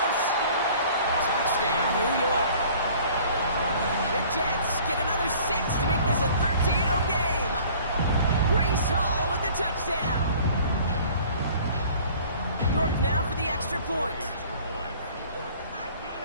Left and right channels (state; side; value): inverted; both; correlation -0.50